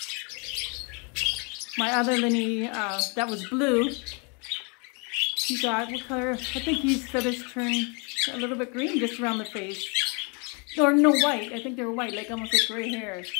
My other Linnie, that was blue, he got, what color? I think his feathers turned a little bit green just around the face. Or no, white. I think they were white, like almost like gray hair.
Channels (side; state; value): right; quieter; 34.0 dB